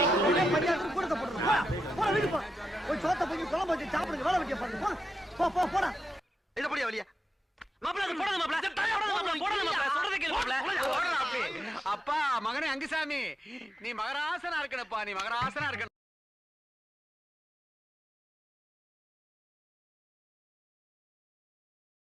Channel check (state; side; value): normal; both; correlation 0.88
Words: அப்பா மகனே அங்குசாமி, நீ மகராசனா இருக்கணுப்பா, நீ மகராசனா இருக்கணும்.